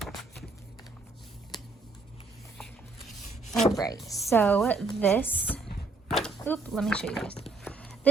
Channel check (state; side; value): quieter; left; 3.5 dB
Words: All right, so this, let me show you guys.